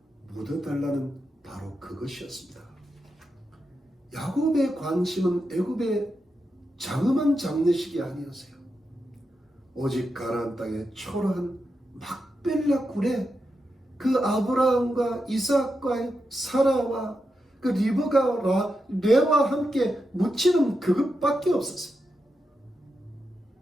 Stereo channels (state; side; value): normal; both; correlation 0.87